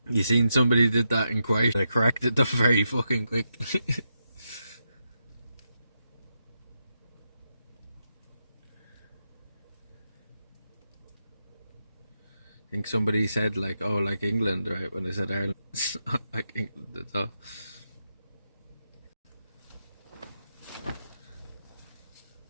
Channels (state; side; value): inverted; both; correlation -0.85